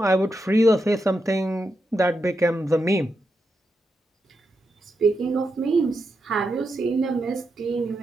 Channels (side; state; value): both; normal; correlation 0.85